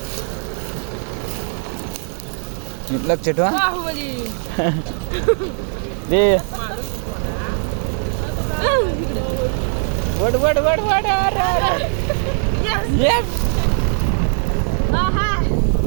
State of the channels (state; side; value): silent; left; 57 dB below the other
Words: लक्ष ठेवा बाहुबली दे वड वड वड वड येस